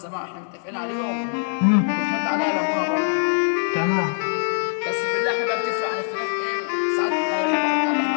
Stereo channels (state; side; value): silent; right; 58 dB below the other